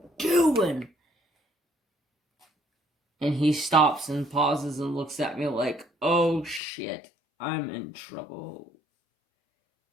doing? And he stops and pauses and looks at me like, oh shit, I'm in trouble.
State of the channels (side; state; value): right; drops out; at 6.6 s